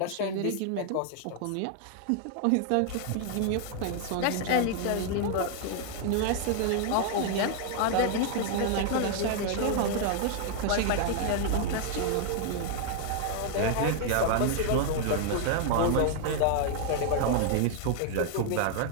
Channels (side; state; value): both; different; correlation 0.00